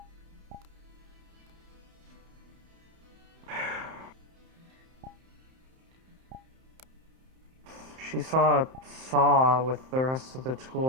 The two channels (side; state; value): left; late; 31 ms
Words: She saw a saw with the rest of the